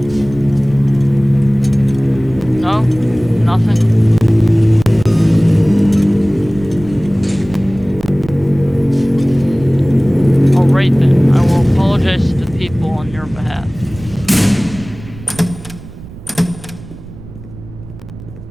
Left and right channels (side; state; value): right; noise; rumble, 16 dB below the sound